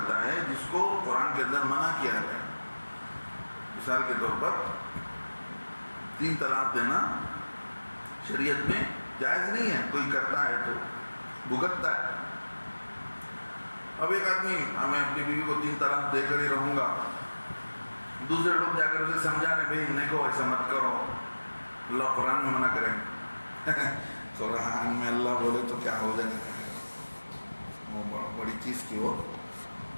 ہے جس کو قرآن کے اندر منع کیا گیا. مثال کے طور پر 3 طلاق دینا شریعت میں جائز نہیں ہے. کوئی کرتا ہے تو بھگتتا ہے. اب ایک آدمی میں اپنی بیوی کو 3 طلاق دے کر ہی رہوں گا، دوسرے لوگ جا کر اسے سمجھا رہے بھائی نہیں ایسا مت کرو، اللہ قرآن میں منع کریں. قرآن میں اللہ بولے تو کیا ہو جائے گا، وہ بڑی چیز کی ہو.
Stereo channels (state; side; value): inverted; both; correlation -1.00